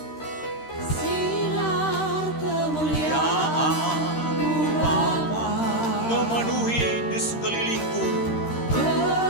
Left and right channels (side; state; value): right; late; 13 ms